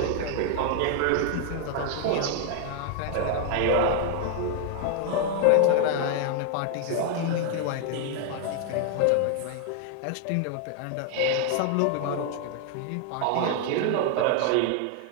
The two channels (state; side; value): different; both; correlation 0.00